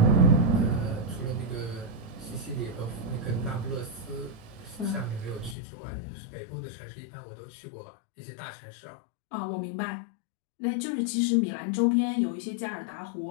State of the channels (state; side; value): drops out; right; at 5.6 s